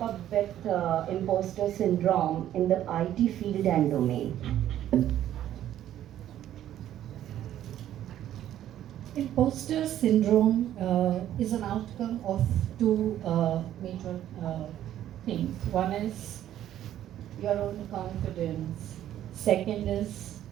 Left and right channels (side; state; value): left; quieter; 11.8 dB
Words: up with imposter syndrome in the IT field and domain? Imposter syndrome is an outcome of two major things. One is your own confidence. Second is